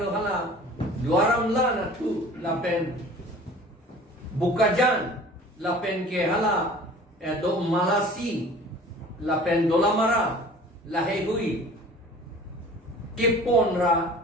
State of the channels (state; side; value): normal; both; correlation 0.45